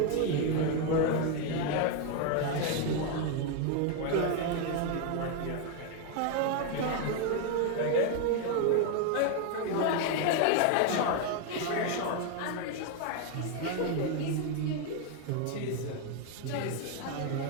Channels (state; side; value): different; both; correlation 0.01